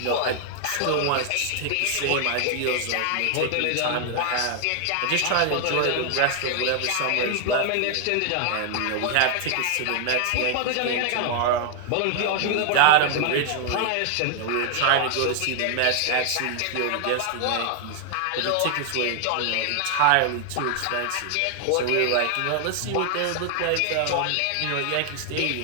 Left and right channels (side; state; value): both; different; correlation 0.00